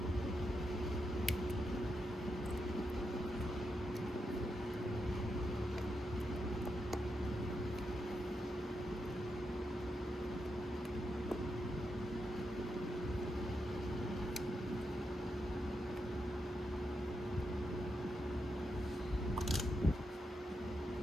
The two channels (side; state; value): both; normal; correlation 0.84